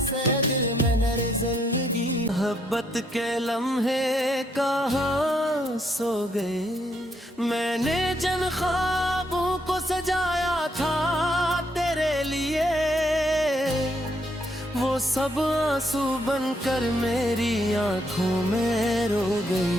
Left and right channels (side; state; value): both; normal; correlation 0.73